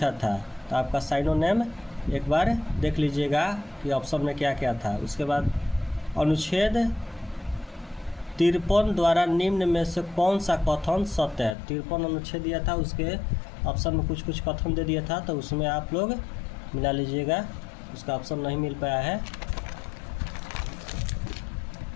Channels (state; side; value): drops out; right; at 11.6 s